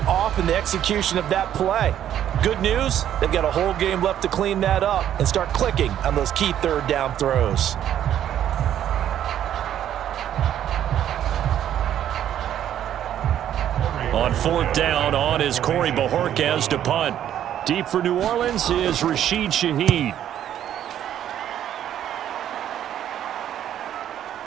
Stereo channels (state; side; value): quieter; left; 10.8 dB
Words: off in the execution of that play. Good news, they've got a whole game left to clean that up and start clicking on those key 3rd down throws. On 4th down, on is Corey Bojorquez to punt. Deep for New Orleans is Rashid Shaheed.